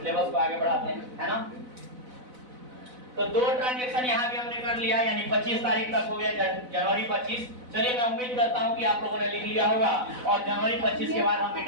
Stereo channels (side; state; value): left; late; 4.0 ms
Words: को आगे बढ़ाते हैं, है ना? तो दो ट्रांजैक्शन यहाँ भी हमने कर लिया, यानी 25 तारीख तक हो गया, जनवरी 25। चलिए मैं उम्मीद करता हूँ कि आप लोगों ने लिख लिया होगा और जनवरी 25 के बाद हम